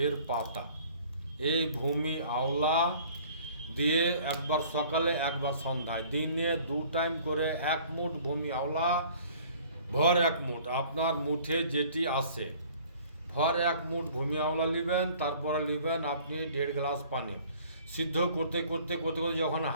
এর পাতা। এই ভূমি আওলা দিয়ে একবার সকালে একবার সন্ধ্যায়, দিনে 2 টাইম করে 1 মুঠ ভূমি আওলা, ভর 1 মুঠ, আপনার মুঠে যেটি আসে, ভর 1 মুঠ ভূমি আওলা নেবেন। তারপরে নেবেন আপনি 1.5 গ্লাস পানি। সিদ্ধ করতে করতে করতে করতে যখন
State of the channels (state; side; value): inverted; both; correlation -0.52